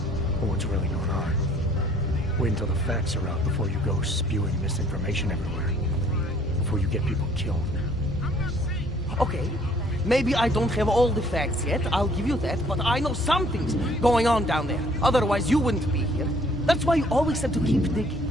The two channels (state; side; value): normal; both; correlation 0.59